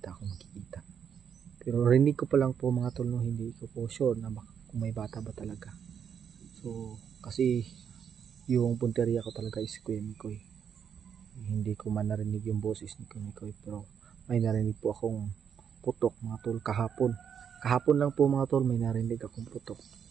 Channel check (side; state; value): left; quieter; 7.8 dB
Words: ako makikita. Pero rinig ko pa lang po mga tol, no? Hindi ko po sure na kung may bata ba talaga. So kasi yung punteriya ko talaga is Kuya Mikoy, hindi ko man narinig yung boses ni Kuya Mikoy, pero may narinig po akong putok mga tol kahapon lang po mga tol, may narinig akong putok,